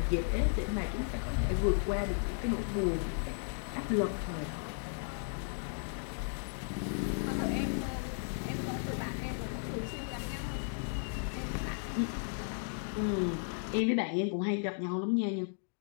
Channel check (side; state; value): right; silent; digital silence